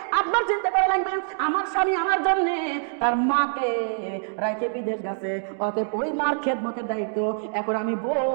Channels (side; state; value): left; silent; digital silence